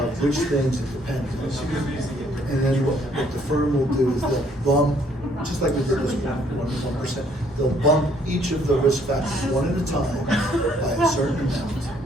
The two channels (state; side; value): normal; both; correlation 0.65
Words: which things it depends on. And then what the firm will do is they'll bump, just like we did this 1%, they'll bump each of the risk factors one at a time by a certain amount.